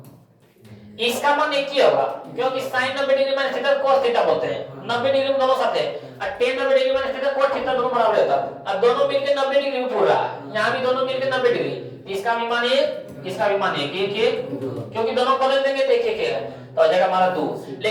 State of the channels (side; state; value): both; identical; correlation 1.00